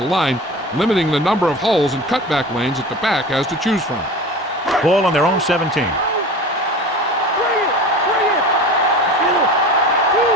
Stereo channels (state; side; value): normal; both; correlation 0.35